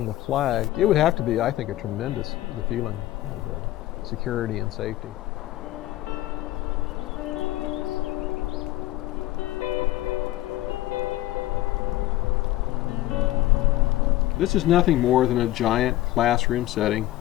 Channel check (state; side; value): quieter; right; 15.8 dB